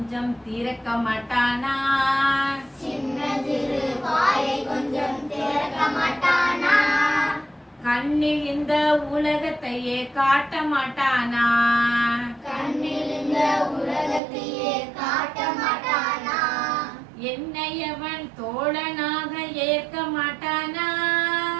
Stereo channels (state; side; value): drops out; left; at 14.2 s